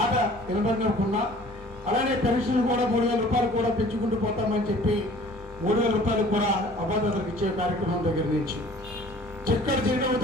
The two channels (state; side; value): normal; both; correlation 0.50